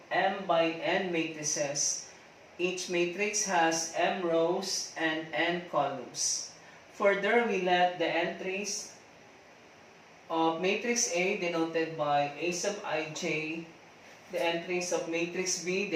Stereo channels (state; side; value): identical; both; correlation 1.00